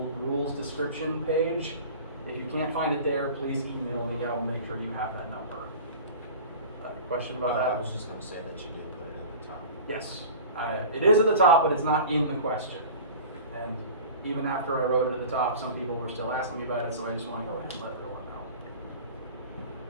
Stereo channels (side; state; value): both; inverted; correlation -0.38